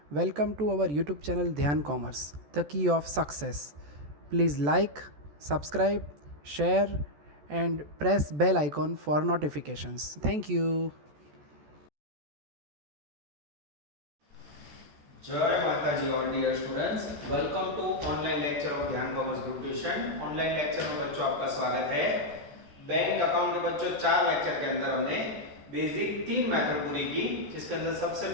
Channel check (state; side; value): late; left; 14 ms